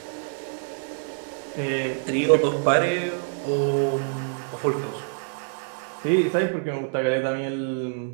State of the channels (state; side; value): silent; left; digital silence